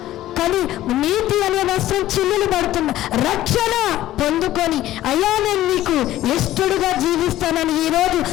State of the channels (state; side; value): quieter; right; 14.3 dB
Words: కానీ నీతి అనే వస్త్రం చిల్లులు పడుతున్నా. రక్షణ పొందుకొని అయ్యా నేను నీకు ఇష్టడుగా జీవిస్తానని ఈరోజు